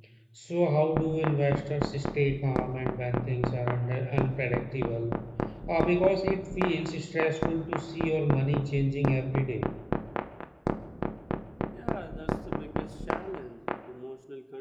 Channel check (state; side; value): identical; both; correlation 1.00